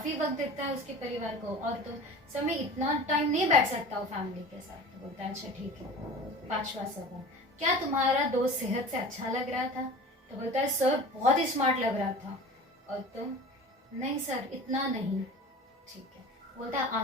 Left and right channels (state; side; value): normal; both; correlation 0.38